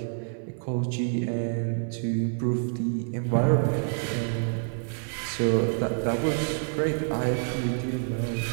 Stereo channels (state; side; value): silent; left; 56 dB below the other